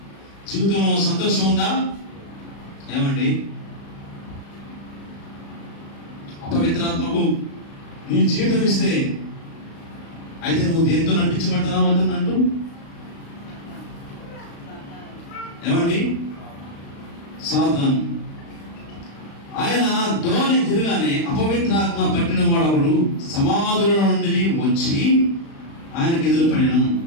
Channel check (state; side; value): late; right; 35 ms